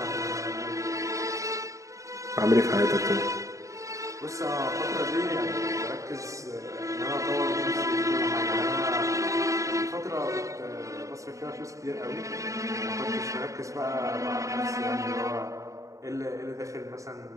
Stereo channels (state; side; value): late; left; 0.16 ms